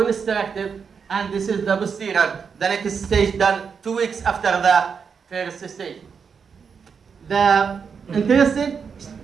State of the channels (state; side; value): quieter; left; 6.2 dB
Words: and this is the posterior. The next stage done 2 weeks after the first stage. The interesting